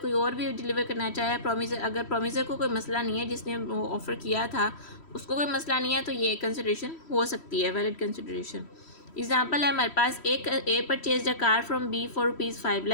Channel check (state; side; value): late; right; 3.1 ms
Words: और भी deliver करना चाहे, promiser अगर promiser को कोई मसला नहीं है, जिसने ऑफ़र किया था उसको कोई मसला नहीं है, तो ये कंसिडरेशन हो सकती है, वैलिड कंसिडरेशन। एग्जाम्पल है हमारे पास, एक A purchase a car from B for ₹5